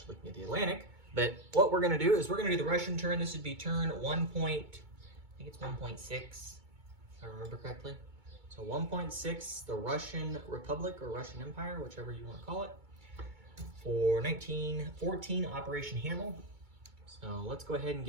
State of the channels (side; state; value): left; late; 2.2 ms